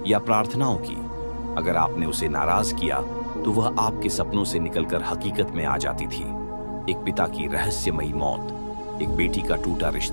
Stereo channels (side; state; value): both; inverted; correlation -1.00